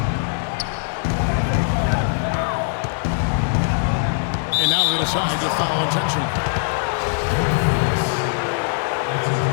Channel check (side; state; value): right; silent; digital silence